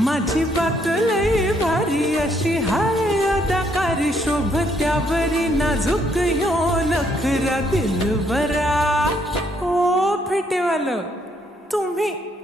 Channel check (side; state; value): both; normal; correlation 0.71